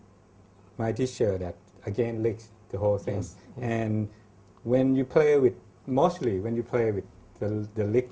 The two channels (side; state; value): both; identical; correlation 1.00